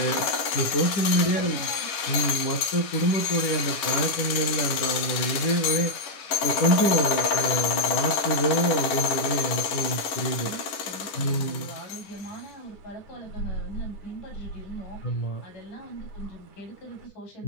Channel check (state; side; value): late; right; 11 ms